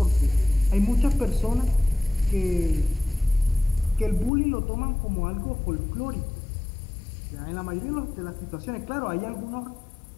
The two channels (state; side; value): drops out; right; at 4.3 s